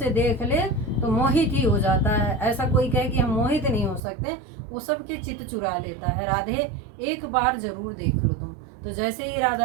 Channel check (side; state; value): left; drops out; at 4.0 s